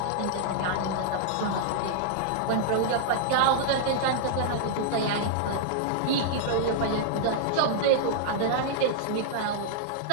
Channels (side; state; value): both; different; correlation -0.01